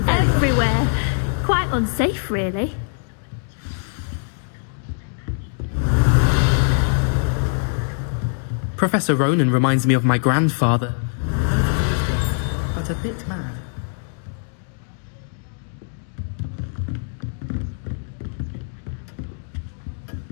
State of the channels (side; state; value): right; silent; 64 dB below the other